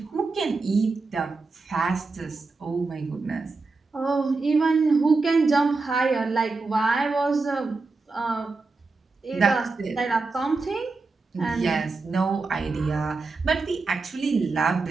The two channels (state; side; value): quieter; left; 3.9 dB